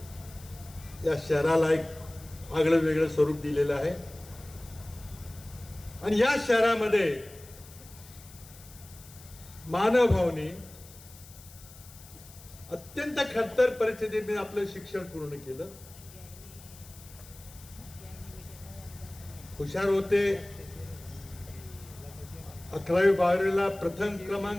या शहराला एक आगळं वेगळं स्वरूप दिलेलं आहे. आणि या शहरामध्ये मानवभावनी अत्यंत खडतर परिस्थितीत आपलं शिक्षण पूर्ण केलं. हुशार होते. 11वी 12वीला प्रथम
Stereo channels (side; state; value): left; noise; hiss, 20 dB below the sound